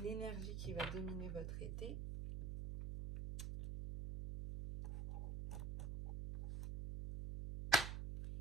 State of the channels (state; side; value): noise; right; hum, 4 dB below the sound